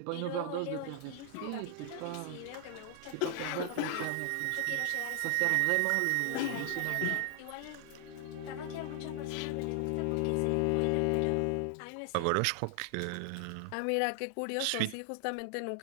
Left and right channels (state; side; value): different; both; correlation 0.00